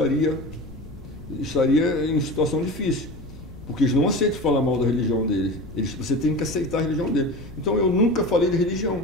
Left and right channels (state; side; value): noise; left; rumble, 16 dB below the sound